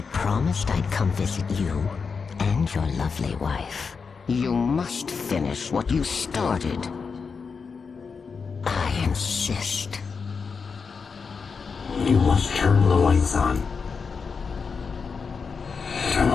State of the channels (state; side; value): quieter; right; 5.3 dB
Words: promised I'd come visit you and your lovely wife. You must finish what you started. I insist. You must turn the lights on. Turn the